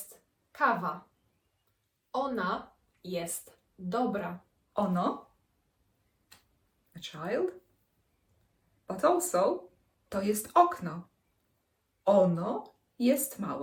kawa. Ona jest dobra. Ono, a child. But also, to jest okno. Ono jest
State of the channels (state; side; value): identical; both; correlation 1.00